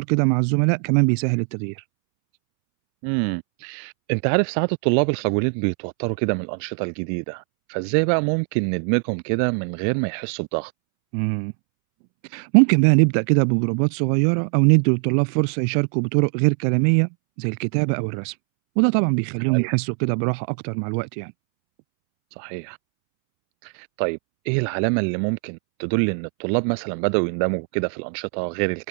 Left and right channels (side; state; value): left; silent; 64 dB below the other